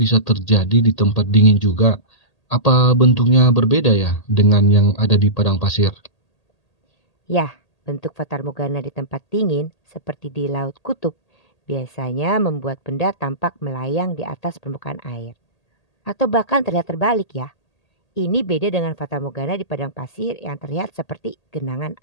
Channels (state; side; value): late; right; 1.8 ms